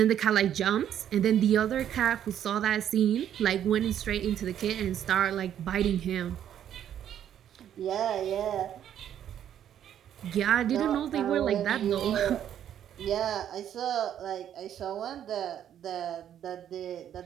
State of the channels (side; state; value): left; quieter; 10.2 dB